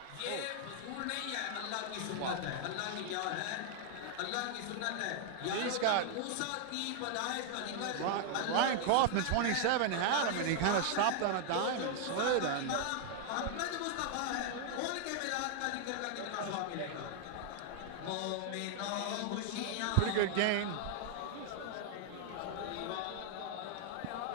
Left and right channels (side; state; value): both; different; correlation 0.00